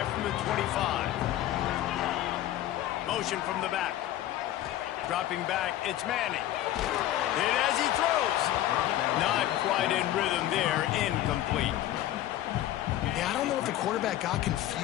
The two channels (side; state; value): right; quieter; 13.4 dB